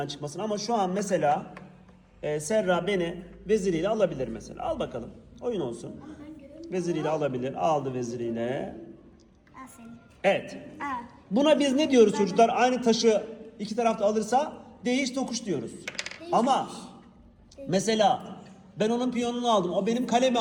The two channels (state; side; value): identical; both; correlation 1.00